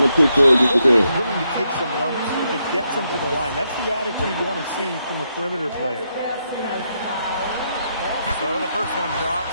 quick forward just because. Willing to take some lumps if it gets them to the line. That's the attitude you want to see from a perimeter player. So the first one drops,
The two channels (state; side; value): inverted; both; correlation -0.80